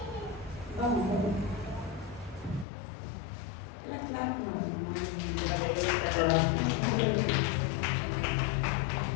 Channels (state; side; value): drops out; right; at 2.7 s